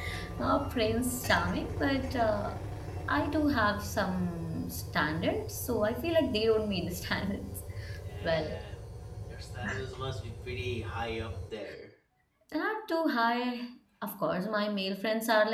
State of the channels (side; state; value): both; identical; correlation 1.00